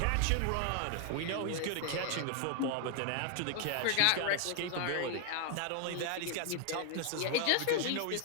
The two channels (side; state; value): both; different; correlation 0.00